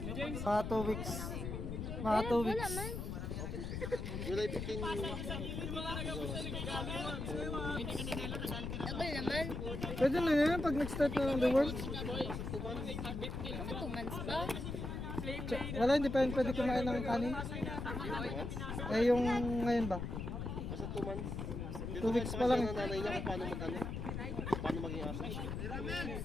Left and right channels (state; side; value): noise; left; rumble, 4 dB below the sound